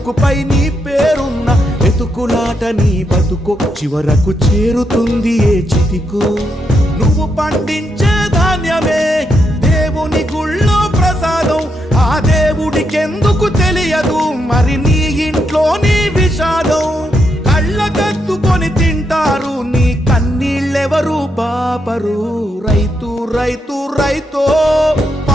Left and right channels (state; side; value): normal; both; correlation 0.80